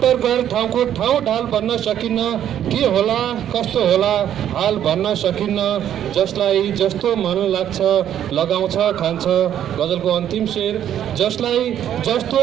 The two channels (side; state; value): left; quieter; 10.4 dB